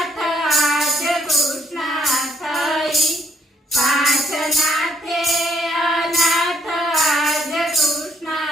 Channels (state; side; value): normal; both; correlation 0.70